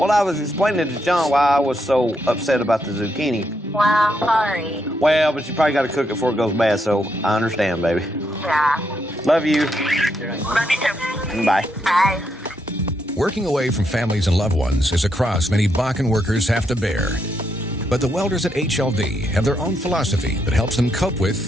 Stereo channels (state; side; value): normal; both; correlation 0.79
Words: I was explaining to John why I was so upset about the zucchini. Well, sorry. Well, but you probably got to cook it before it goes bad, so I understand, baby. Yeah. Love you. Love you too. Bye. Bye. Working away from families and loved ones is a cross many Bakken workers have to bear. But the welders at HLD have their own philosophy that helps them cope with